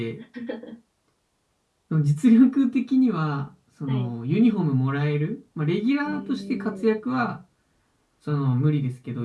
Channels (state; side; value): identical; both; correlation 1.00